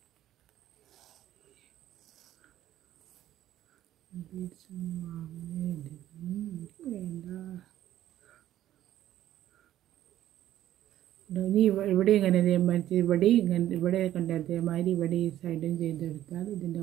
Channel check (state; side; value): quieter; left; 12.7 dB